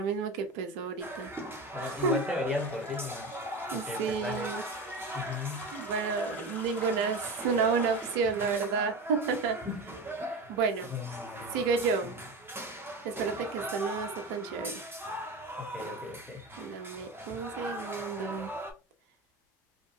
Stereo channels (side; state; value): left; quieter; 3.2 dB